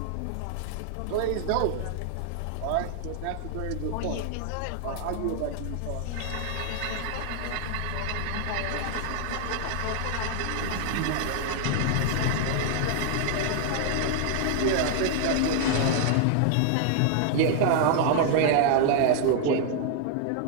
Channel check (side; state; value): both; different; correlation 0.00